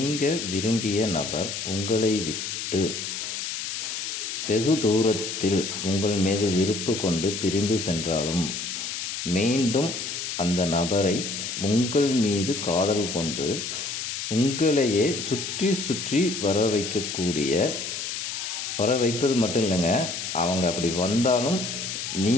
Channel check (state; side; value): noise; left; hiss, 5 dB below the sound